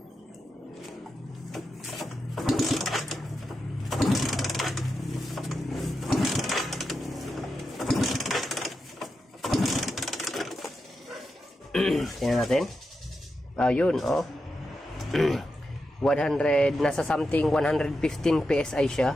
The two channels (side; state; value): both; normal; correlation 0.88